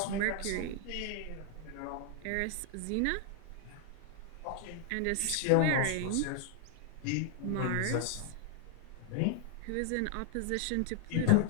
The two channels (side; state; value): both; different; correlation 0.00